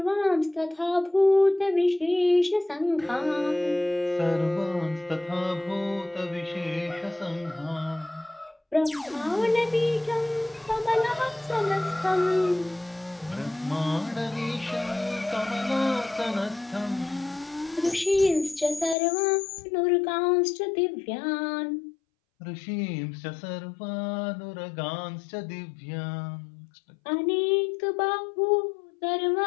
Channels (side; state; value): right; drops out; at 18.9 s